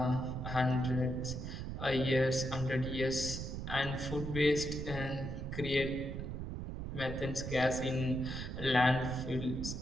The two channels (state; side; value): noise; right; rumble, 6 dB below the sound